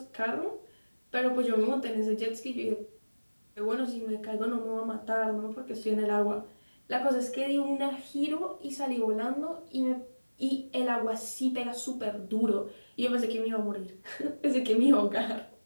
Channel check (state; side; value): inverted; both; correlation -1.00